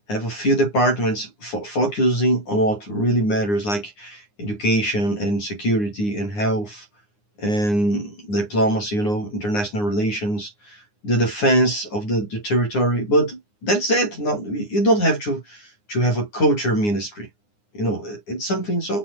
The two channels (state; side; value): late; right; 9.7 ms